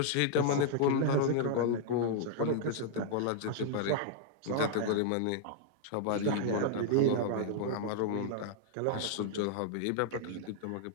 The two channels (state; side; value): different; both; correlation -0.01